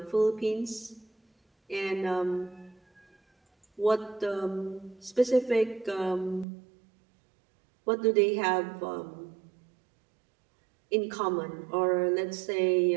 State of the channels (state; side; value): drops out; left; at 6.5 s